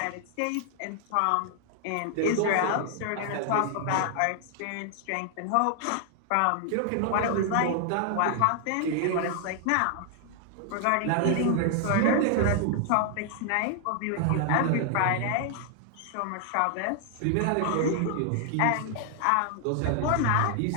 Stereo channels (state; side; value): different; both; correlation 0.00